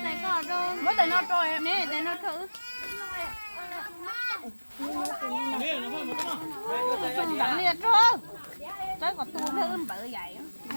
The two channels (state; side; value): inverted; both; correlation -1.00